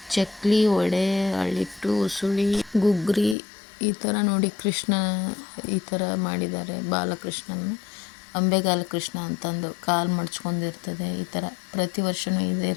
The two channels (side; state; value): right; drops out; at 3.4 s